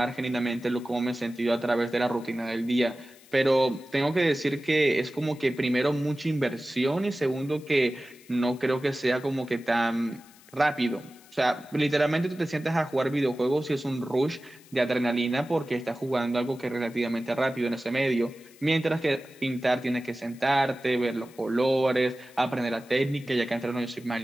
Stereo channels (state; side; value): noise; left; hiss, 25 dB below the sound